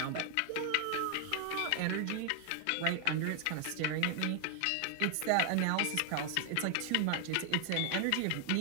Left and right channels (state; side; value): different; both; correlation 0.00